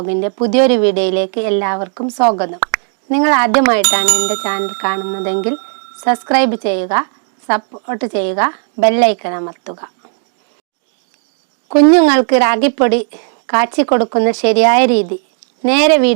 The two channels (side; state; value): left; silent; 60 dB below the other